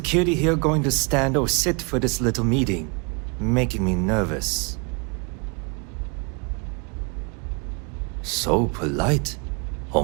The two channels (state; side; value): quieter; left; 33.0 dB